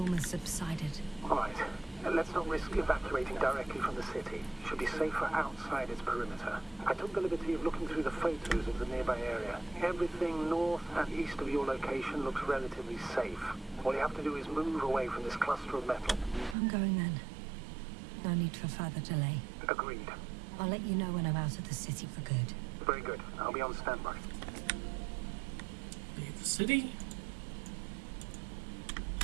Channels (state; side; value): drops out; left; at 16.6 s